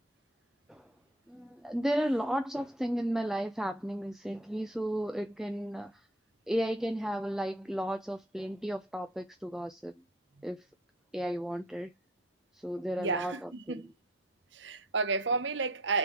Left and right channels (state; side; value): normal; both; correlation 0.53